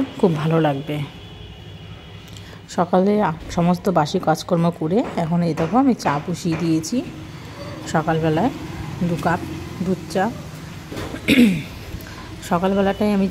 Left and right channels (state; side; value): identical; both; correlation 1.00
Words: খুব ভালো লাগবে। সকালে সমস্ত বাসি কাজকর্ম করে এখন এই দেখো আমি চা বসিয়ে দিয়েছি। সকালবেলায় 2 কাপ দুধ চা। সকালবেলাটাই আমি